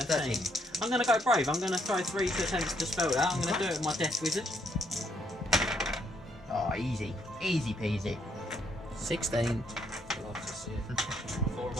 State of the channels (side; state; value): both; normal; correlation 0.72